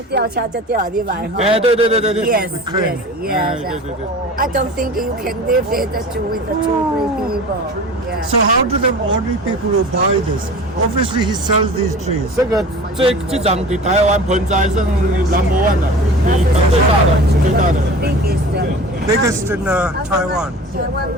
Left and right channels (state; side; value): normal; both; correlation 0.38